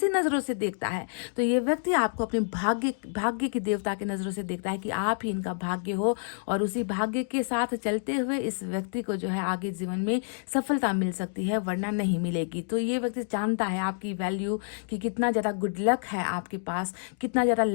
नजरों से देखता है। तो ये व्यक्ति आपको अपने भाग्य की देवता की नजरों से देखता है कि आप ही इनका भाग्य हो, और उसी भाग्य के साथ चलते हुए इस व्यक्ति को जो है आगे जीवन में सफलता मिल सकती है, वरना नहीं मिलेगी। तो ये व्यक्ति जानता है आपकी वैल्यू, कि कितना ज्यादा गुड लक है आपके पास, कितना ज्यादा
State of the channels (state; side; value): silent; right; digital silence